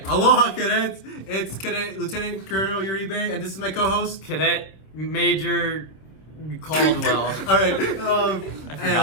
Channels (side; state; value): right; late; 26 ms